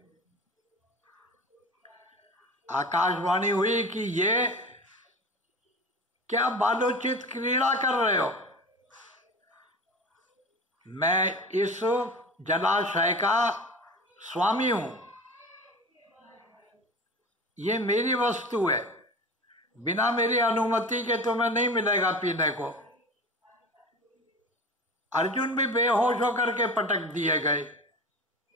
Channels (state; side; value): normal; both; correlation 0.33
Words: आकाशवाणी हुई कि ये क्या बालोचित क्रीड़ा कर रहे हो। मैं इस जलाशय का स्वामी हूं, ये मेरी वस्तु है। बिना मेरी अनुमति के तुम्हें नहीं मिलेगा पीने को। अर्जुन भी बेहोश होकर के पटक दिए गए।